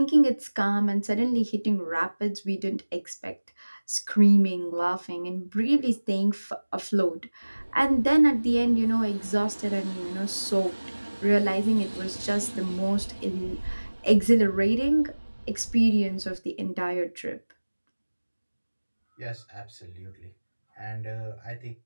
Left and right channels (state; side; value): inverted; both; correlation -1.00